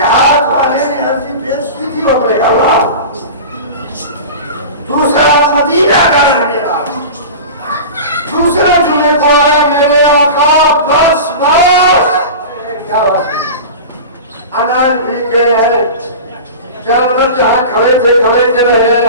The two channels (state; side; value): inverted; both; correlation -0.32